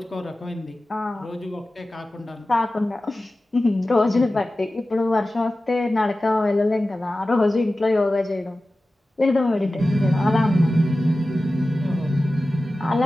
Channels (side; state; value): both; normal; correlation 0.95